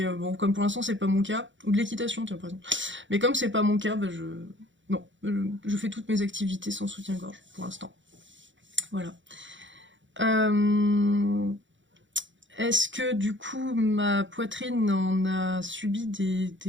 bon, comme pour l'instant c'est pas mon cas, ou de l'équitation, tiens par exemple. Mais comme c'est pas mon cas, bah non, je fais toutes mes activités sans soutien-gorge pour l'instant. Voilà. Est-ce que du coup ma poitrine en a subi des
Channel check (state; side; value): late; left; 0.55 ms